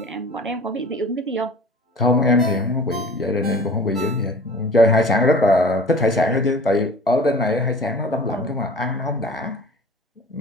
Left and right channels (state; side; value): normal; both; correlation 0.43